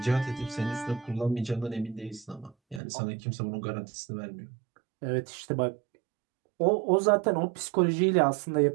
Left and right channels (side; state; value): left; drops out; at 2.8 s